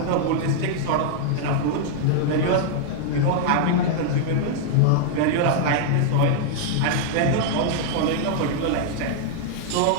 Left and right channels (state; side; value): different; both; correlation -0.01